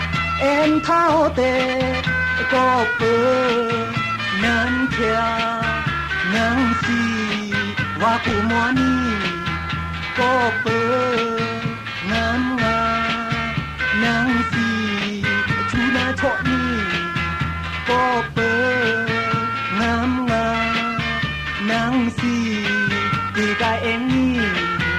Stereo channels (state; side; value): identical; both; correlation 1.00